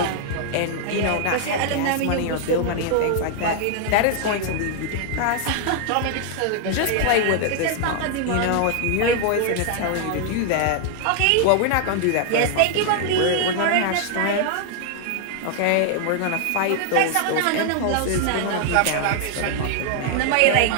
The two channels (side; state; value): both; different; correlation 0.00